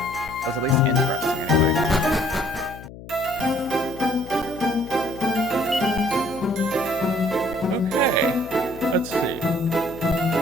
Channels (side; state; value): left; noise; hum, 15 dB below the sound